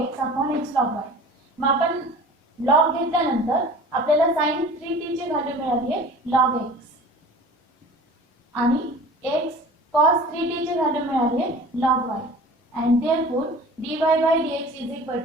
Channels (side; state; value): both; normal; correlation 0.42